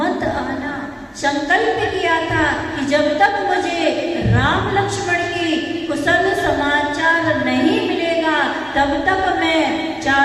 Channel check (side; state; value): both; identical; correlation 1.00